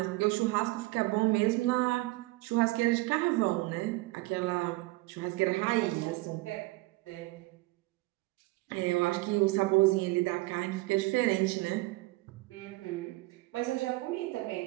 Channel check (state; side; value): quieter; left; 21.2 dB